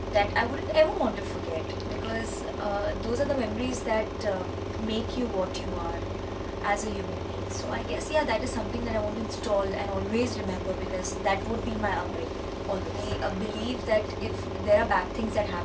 that I wouldn't ever want to forget because those are the memories that make you what you are as a human being. So I guess that is something that I want to install and always remember because that would be my upbringing. Always. I believe that if there are bad things that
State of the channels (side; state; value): both; identical; correlation 1.00